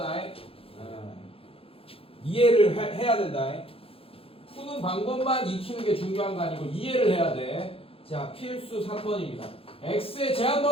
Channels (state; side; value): late; right; 0.27 ms